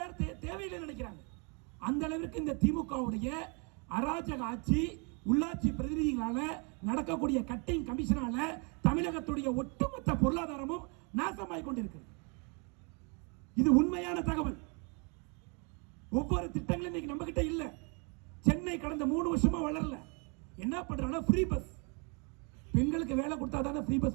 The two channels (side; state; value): left; quieter; 34.5 dB